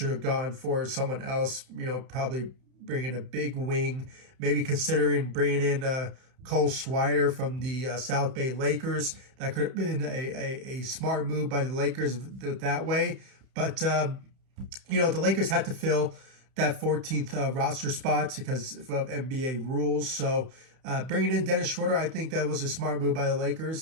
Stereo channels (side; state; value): left; late; 31 ms